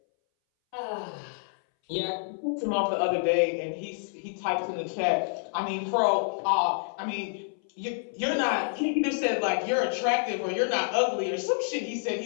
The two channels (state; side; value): silent; right; 59 dB below the other